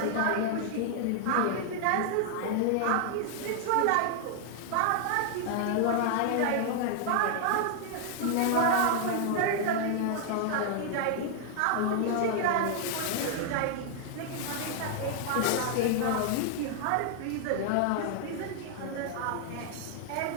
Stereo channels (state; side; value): different; both; correlation 0.00